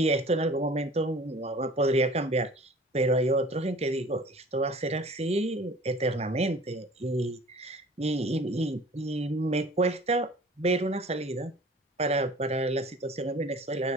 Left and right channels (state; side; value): normal; both; correlation 0.47